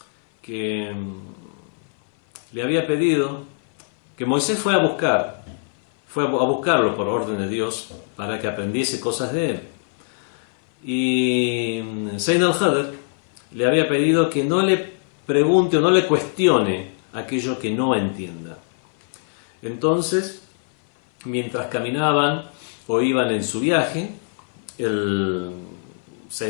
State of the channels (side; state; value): right; silent; 59 dB below the other